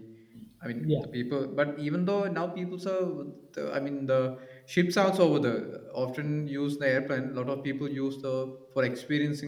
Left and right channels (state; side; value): identical; both; correlation 1.00